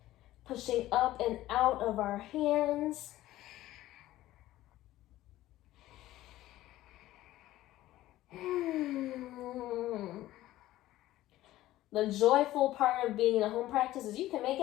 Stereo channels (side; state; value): right; quieter; 15.3 dB